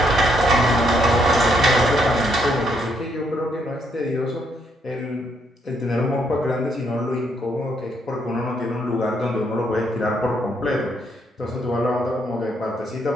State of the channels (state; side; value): normal; both; correlation 0.73